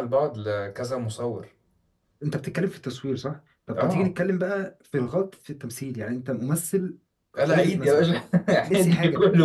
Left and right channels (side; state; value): both; identical; correlation 1.00